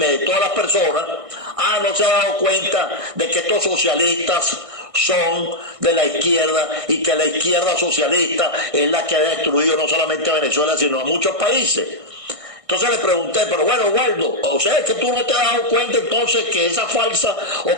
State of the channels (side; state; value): left; late; 1.6 ms